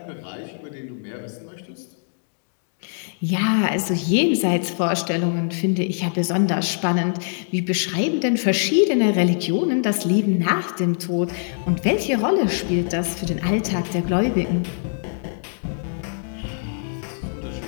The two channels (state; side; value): silent; right; digital silence